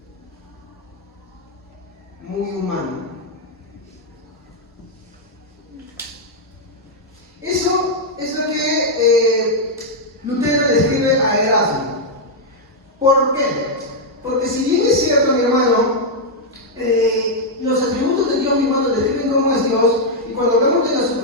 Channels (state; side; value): normal; both; correlation -0.02